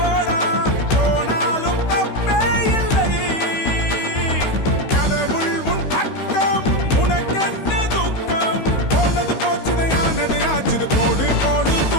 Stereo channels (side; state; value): right; late; 16 ms